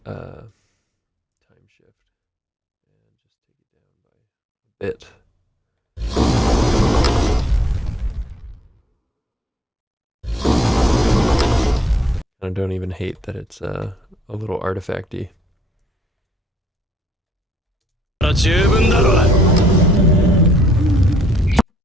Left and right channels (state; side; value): normal; both; correlation 0.65